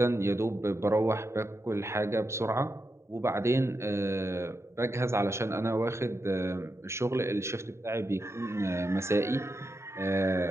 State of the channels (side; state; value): left; late; 0.13 ms